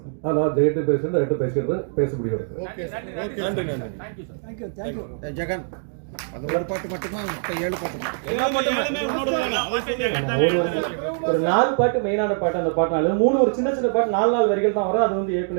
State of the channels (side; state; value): left; silent; digital silence